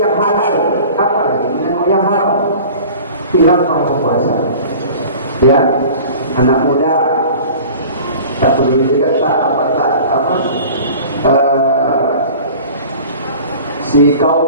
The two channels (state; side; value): inverted; both; correlation -0.42